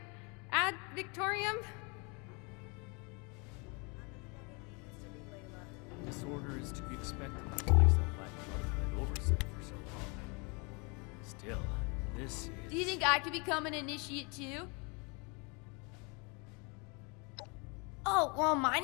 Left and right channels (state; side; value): quieter; right; 31.5 dB